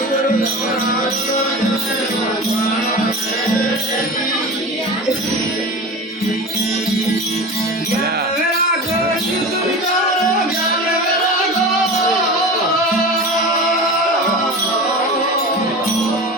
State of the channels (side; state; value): both; normal; correlation 0.31